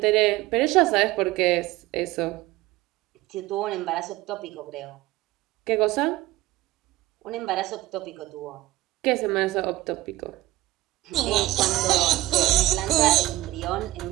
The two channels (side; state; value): left; quieter; 17.1 dB